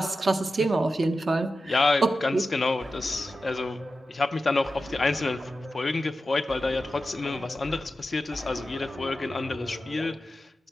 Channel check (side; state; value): both; normal; correlation 0.92